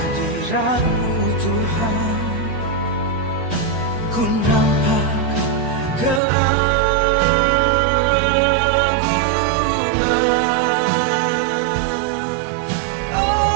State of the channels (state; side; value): drops out; left; at 6.2 s